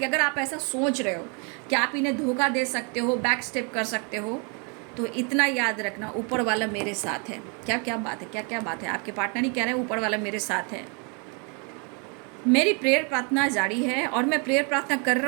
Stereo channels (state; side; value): quieter; left; 35.4 dB